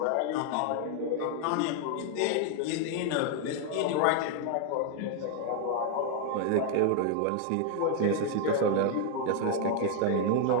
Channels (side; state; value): both; different; correlation 0.00